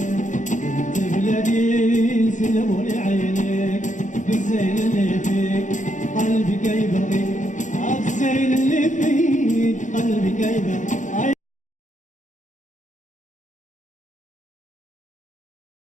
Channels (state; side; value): late; right; 0.36 ms